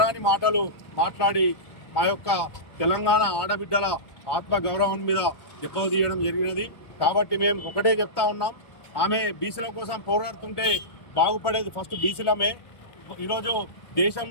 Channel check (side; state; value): right; late; 1.2 ms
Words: మాటలు మాట్లాడి మా యొక్క తెలంగాణ ఆడబిడ్డల ఆత్మగౌరవం మీద దెబ్బతీయడం జరిగినది. కాబట్టి మేము ఒకటే చెప్తా ఉన్నాం, ఆమె బీసీల కోసం పోరాడుతుంటే బాగుపడేది ఫస్ట్ బీసీలమే. ఈరోజు